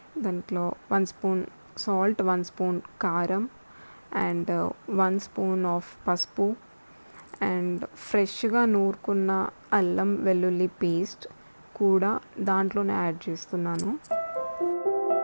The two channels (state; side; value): inverted; both; correlation -1.00